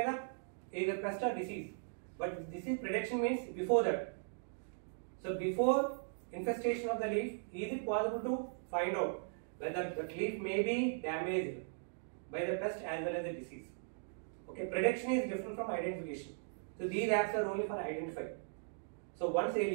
the either pest or disease. But disease prediction means before that. So before infestation of the leaf, is it possible to find out whether the leaf may be damaged by the pest as well as the disease? Okay, prediction is different from identification. So these apps are only for identifying. So once a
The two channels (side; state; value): left; silent; digital silence